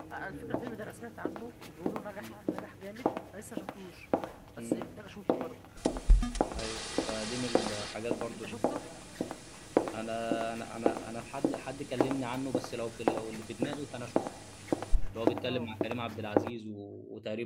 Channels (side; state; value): both; identical; correlation 1.00